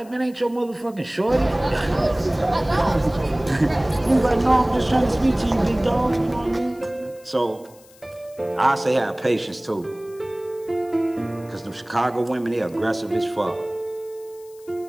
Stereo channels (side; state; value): left; noise; hiss, 26 dB below the sound